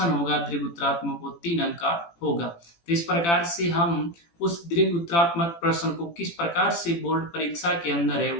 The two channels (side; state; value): right; late; 18 ms